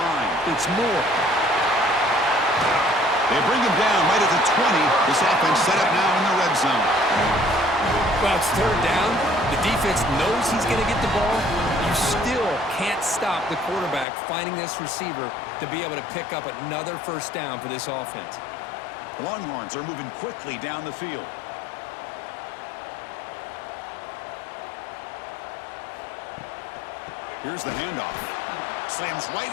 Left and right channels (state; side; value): drops out; right; at 14.1 s